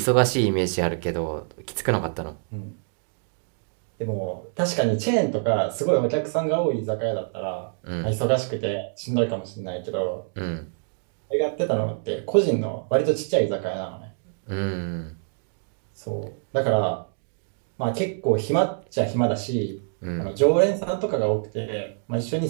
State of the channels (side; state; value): left; silent; digital silence